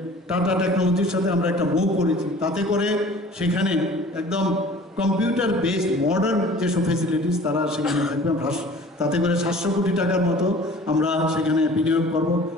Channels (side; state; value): both; normal; correlation 0.47